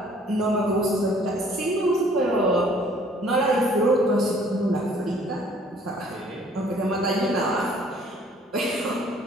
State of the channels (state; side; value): normal; both; correlation 0.57